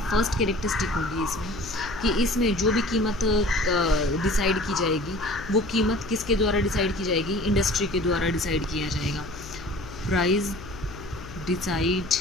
फर्स्ट कैरेक्टरिस्टिक होगी इसमें कि इसमें जो भी कीमत डिसाइड की जाएगी वो कीमत किसके द्वारा डिसाइड की जाएगी? इंडस्ट्री के द्वारा डिसाइड किया जाएगा। Price decide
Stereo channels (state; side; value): noise; left; hum, 15 dB below the sound